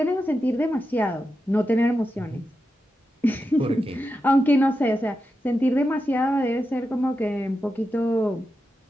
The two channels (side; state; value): both; normal; correlation 0.89